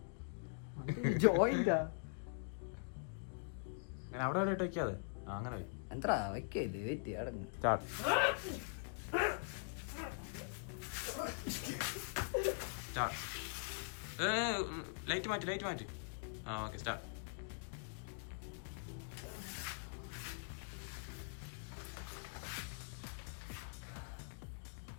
ജോയിന്റാ അങ്ങനെ അവിടെ എവിടെ വെക്കാതെ. അങ്ങനെ എന്താ വെക്കത്? വെയിറ്റ് അടങ്ങ്. ലൈറ്റ് മാറ്റി. Okay, start.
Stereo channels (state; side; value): silent; right; digital silence